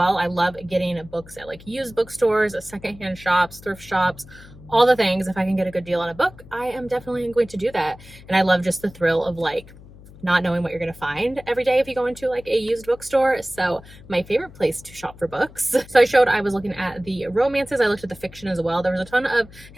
I love getting books at like used bookstores, secondhand shops, thrift shops, all the things. If I can get a good deal on a book, I am definitely going to do that. And I love just the thrill of like not knowing what you're going to find every day if you go into like a used bookstore. So my favorite place to shop for books. So I showed I was looking at the romances. I looked at the fiction as well. There was a ton of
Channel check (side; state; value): left; noise; hum, 20 dB below the sound